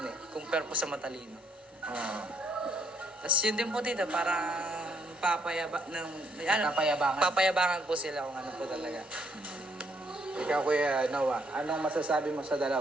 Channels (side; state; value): both; normal; correlation 0.70